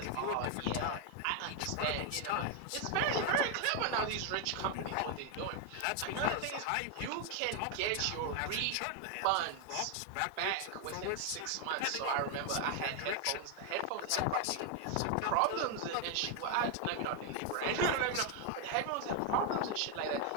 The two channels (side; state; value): both; different; correlation 0.01